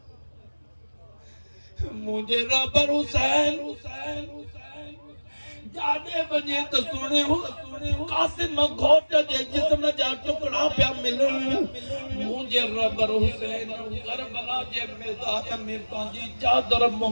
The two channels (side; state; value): both; inverted; correlation -1.00